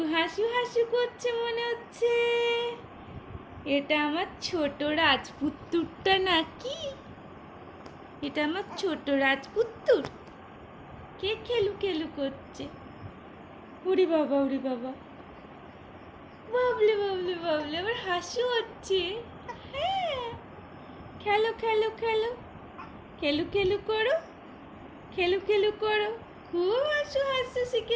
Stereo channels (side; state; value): both; identical; correlation 1.00